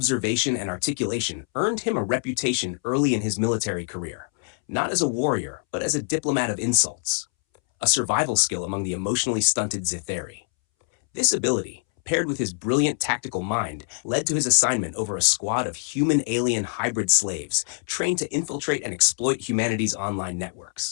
and articulation earned him a reputation early in his military career, not as a warrior, but as a diplomat of insults, a survival skill among the emotionally stunted Zitheri. This ability, paired with his brilliant tactical mind, led to his assignment over a squad of human-alien hybrid slaves trained to infiltrate and exploit humanity's online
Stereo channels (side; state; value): right; silent; 62 dB below the other